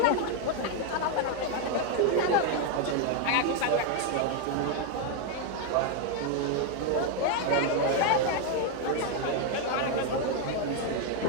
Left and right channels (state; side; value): different; both; correlation 0.01